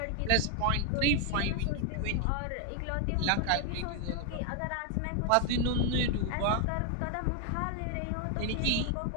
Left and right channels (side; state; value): both; different; correlation 0.01